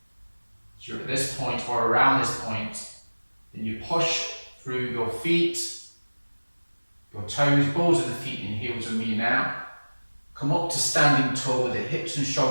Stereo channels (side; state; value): both; inverted; correlation -1.00